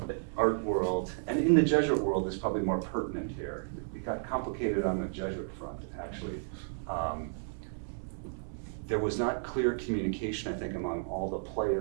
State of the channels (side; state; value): left; silent; 56 dB below the other